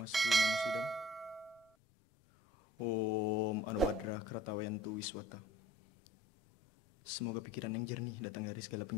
namasidam. Om Anubhadra Kratawayantu Wiswata. Semoga pikiran yang jernih datang dari segala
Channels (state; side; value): normal; both; correlation 0.51